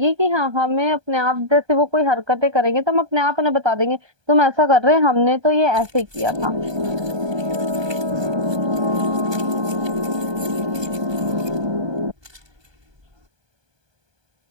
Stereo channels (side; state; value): left; late; 1.2 ms